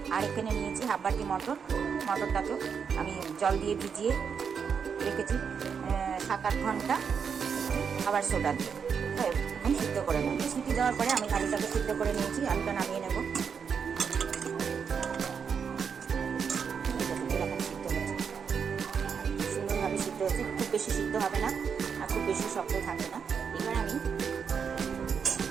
আর এখানে নিয়েছি হাফ বাটি মটরটাকে আমি জল দিয়ে ভিজিয়ে রেখেছি 7-8 ঘন্টা খাবার সোডা দিয়ে। এখন সিদ্ধ করে নেব। সিটি দেওয়ার পরে আমি আলুটাকে সিদ্ধ করে নিয়েছি, আলুটা নামিয়ে নেব। সিদ্ধ হচ্ছে, খুব বেশি সিদ্ধ হবে না আর খুব বেশি শক্ত থাকবে না। এবার আমি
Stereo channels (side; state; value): left; quieter; 6.6 dB